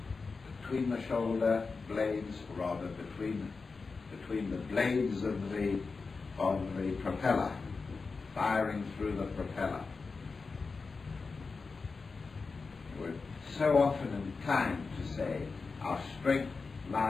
between the shoulder blades, or rather between the blades of the propeller, firing through the propeller. We're so often inclined to say our strength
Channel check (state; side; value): quieter; right; 4.4 dB